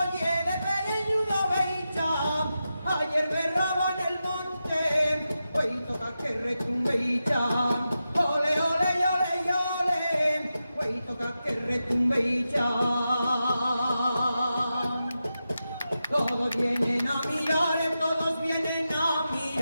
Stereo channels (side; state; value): both; inverted; correlation -0.90